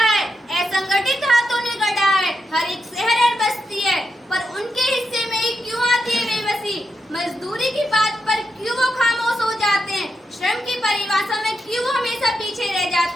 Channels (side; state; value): both; normal; correlation 0.85